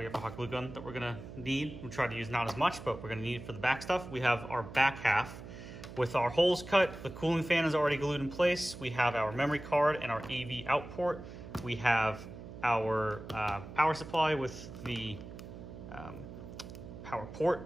hot glue gun that we're gonna need. We try to use not as much, but we're gonna need it for the back stuff. We have our back half with our holes cut. The cooling fan is already glued in place. We have our memory card and our AV out port. We have our power supply with the power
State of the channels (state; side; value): noise; right; hum, 13 dB below the sound